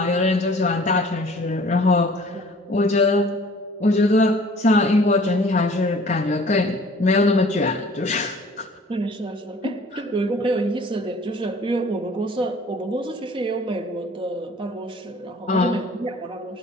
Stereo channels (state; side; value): normal; both; correlation 0.51